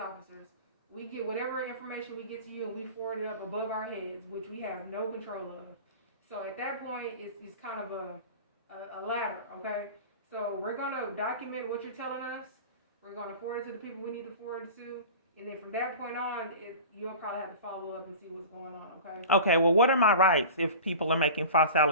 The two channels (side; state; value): both; inverted; correlation -0.37